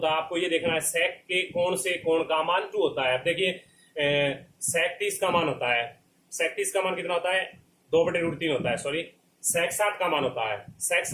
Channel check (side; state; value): both; identical; correlation 1.00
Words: है, आपको ये देखना है sec के कोण से कोण का मान 2 होता है। अब देखिए sec 30 का मान होता है, sec 30 का मान कितना होता है, 2/√3 होता है, सॉरी, sec 60 का मान होता है, sec